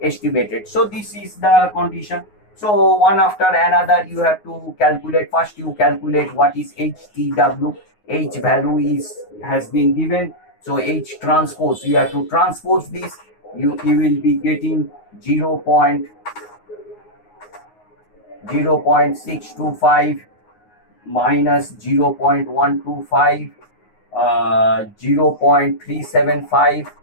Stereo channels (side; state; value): right; late; 9.5 ms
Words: So this is the condition. So one after another you have to calculate. First you calculate what is HTW. H value has been given. So H transpose, you have to transpose this. You will be getting 0.625 minus 0.125, 0.375,